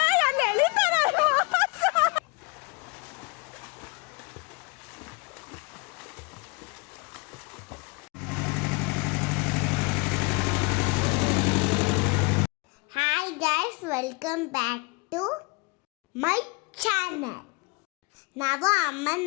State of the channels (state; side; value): quieter; right; 29.1 dB